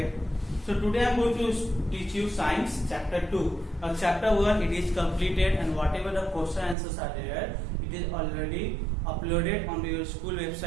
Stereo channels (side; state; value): left; drops out; at 6.8 s